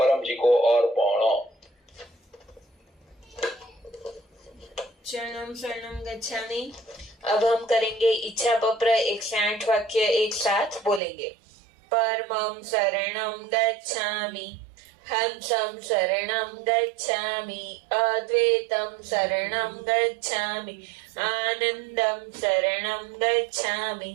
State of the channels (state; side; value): drops out; left; at 11.0 s